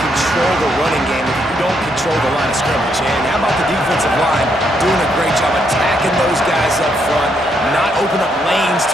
the running game if you don't control the line of scrimmage. And how about the defensive line doing a great job attacking those guys up front, not open up lanes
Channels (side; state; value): both; normal; correlation 0.75